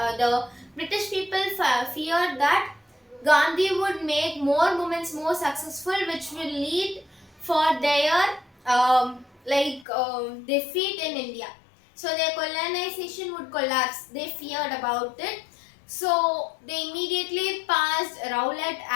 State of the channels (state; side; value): drops out; right; at 9.9 s